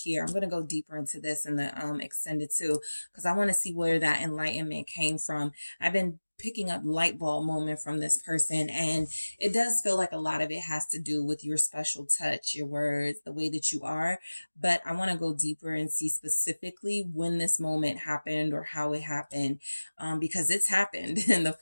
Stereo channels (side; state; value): both; inverted; correlation -1.00